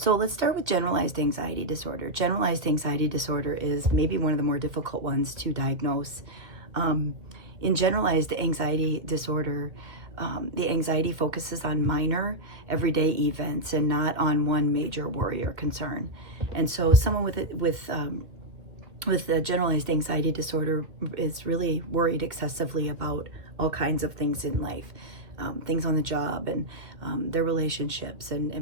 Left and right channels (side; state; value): left; late; 1.8 ms